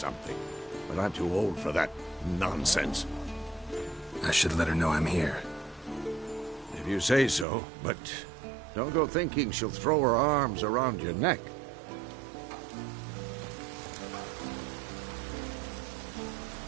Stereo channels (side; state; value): left; drops out; at 7.5 s